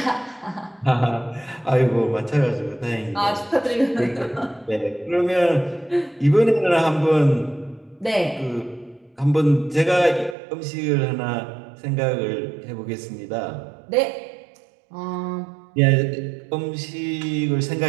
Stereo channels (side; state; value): left; drops out; at 10.4 s